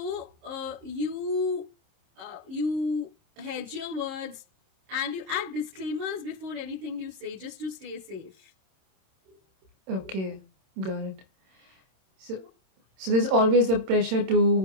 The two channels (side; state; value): left; late; 26 ms